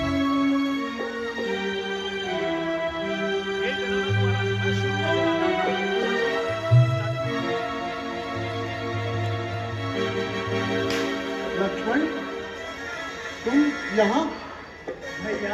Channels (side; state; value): both; identical; correlation 1.00